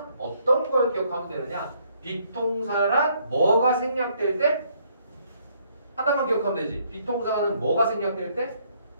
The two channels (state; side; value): inverted; both; correlation -0.68